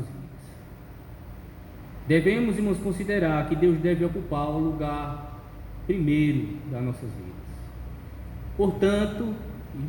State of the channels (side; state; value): both; identical; correlation 1.00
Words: Devemos, irmãos, considerar que Deus deve ocupar o lugar primeiro das nossas vidas. Portanto,